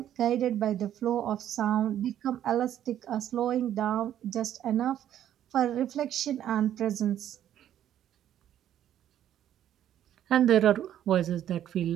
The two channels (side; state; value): left; quieter; 11.0 dB